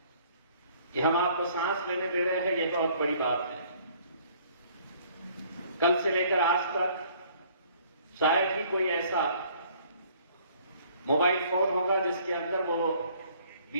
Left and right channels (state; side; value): inverted; both; correlation -0.58